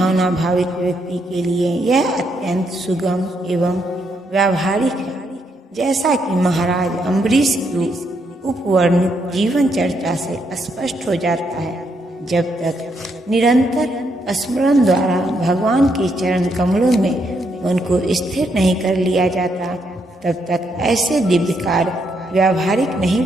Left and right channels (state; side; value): normal; both; correlation 0.77